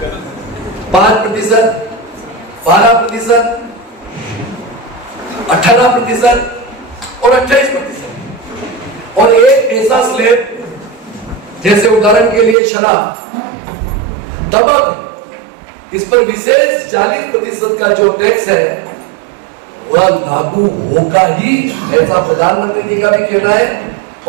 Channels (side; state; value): left; drops out; at 12.6 s